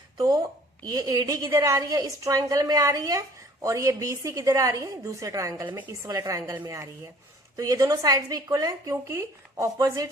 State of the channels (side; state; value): both; normal; correlation 0.53